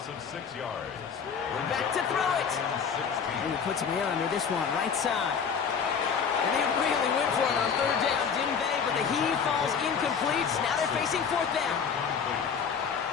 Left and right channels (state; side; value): quieter; right; 6.5 dB